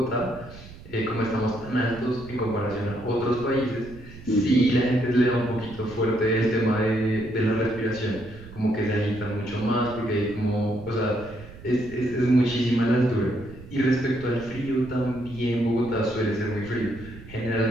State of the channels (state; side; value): noise; right; rumble, 17 dB below the sound